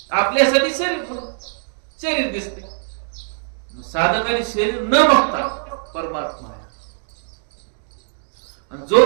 आपल्यासाठी शरीर दिसते. साधकाने शरीर न बघता परमात्मा आहे. आणि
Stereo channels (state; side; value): silent; left; digital silence